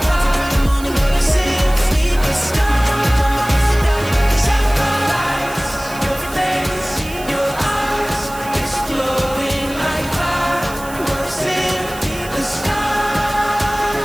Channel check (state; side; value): noise; right; hiss, 16 dB below the sound